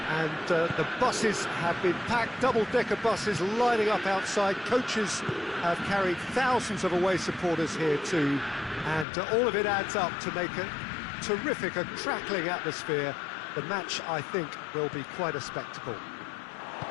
And the buses have been packed, double-decker buses lining up outside. Coaches have carried thousands of away supporters here too. And all of it adds up to make a terrific, a crackling atmosphere. The match, I think, will be quite a spectacle.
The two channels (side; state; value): right; drops out; at 9.1 s